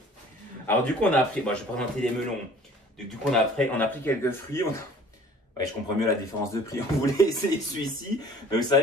Alors, du coup, on a appris. Bon, je vais présenter les melons. Du coup, on a pris quelques fruits. Ouais, je comprends mieux la différence de prix. On voulait essayer celui-ci. Mais vous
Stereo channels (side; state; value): both; normal; correlation 0.50